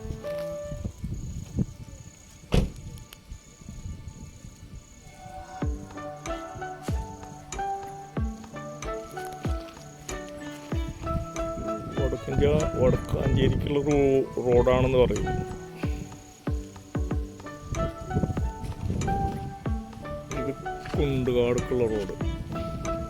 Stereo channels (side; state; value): both; identical; correlation 1.00